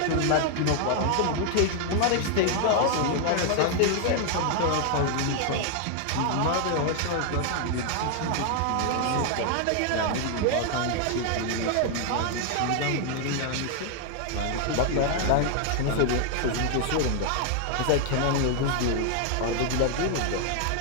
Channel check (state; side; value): different; both; correlation 0.00